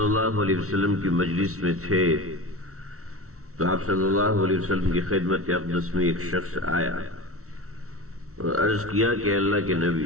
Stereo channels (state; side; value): late; left; 0.64 ms